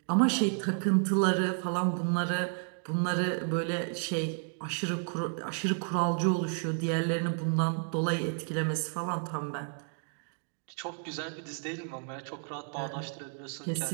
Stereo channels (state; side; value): silent; left; 57 dB below the other